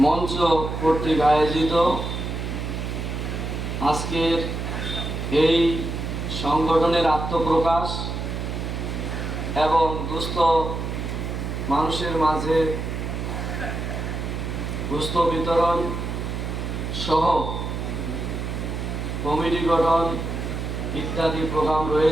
মঞ্চ কর্তৃক আয়োজিত আজকের এই সংগঠনের আত্মপ্রকাশ এবং দুস্থ মানুষের মাঝে দুস্থ বিতরণ সহ কমিটি গঠন ইত্যাদি প্রোগ্রাম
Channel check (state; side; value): noise; right; hum, 4 dB below the sound